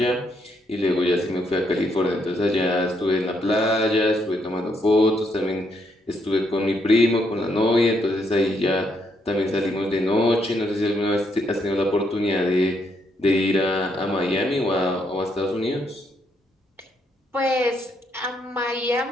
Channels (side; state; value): both; normal; correlation 0.75